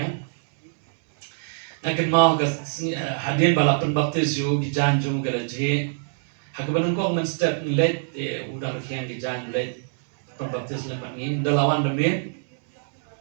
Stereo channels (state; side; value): silent; left; digital silence